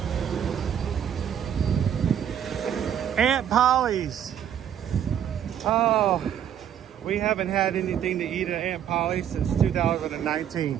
Aunt Polly's. Oh, we haven't had anything to eat at Aunt Polly's since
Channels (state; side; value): quieter; left; 9.5 dB